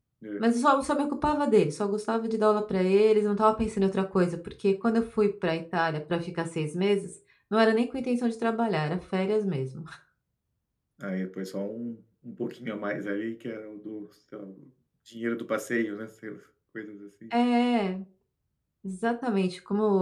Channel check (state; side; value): identical; both; correlation 1.00